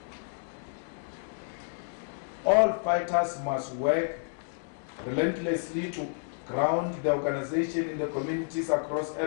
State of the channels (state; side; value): silent; right; digital silence